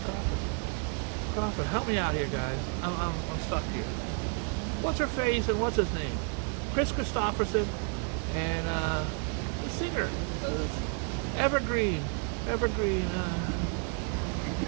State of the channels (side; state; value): left; quieter; 37.7 dB